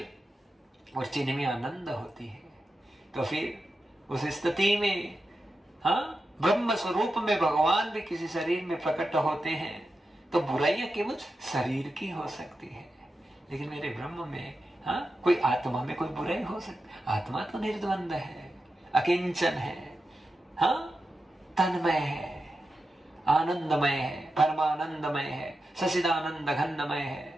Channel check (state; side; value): normal; both; correlation 0.90